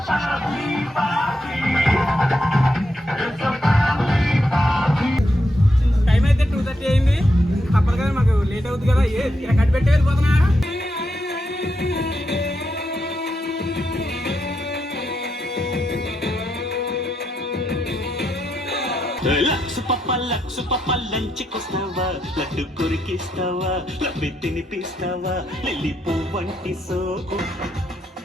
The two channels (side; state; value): both; normal; correlation 0.82